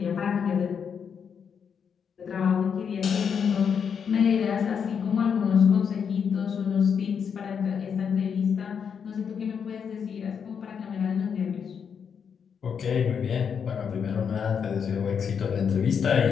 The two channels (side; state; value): right; quieter; 7.0 dB